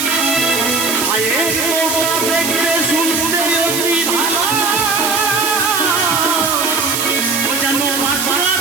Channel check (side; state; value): right; noise; hiss, 1 dB below the sound